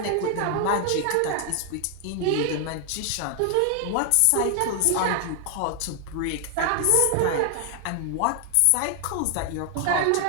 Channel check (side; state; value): both; different; correlation 0.00